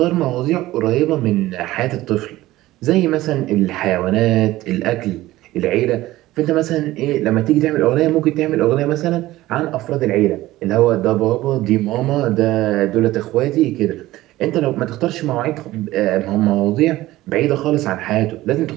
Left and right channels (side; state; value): left; quieter; 16.7 dB